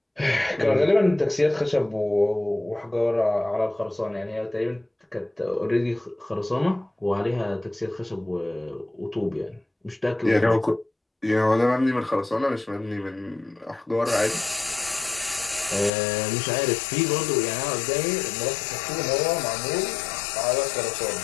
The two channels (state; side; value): drops out; right; at 15.9 s